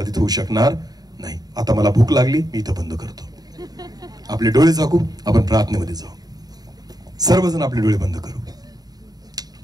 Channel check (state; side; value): late; left; 0.19 ms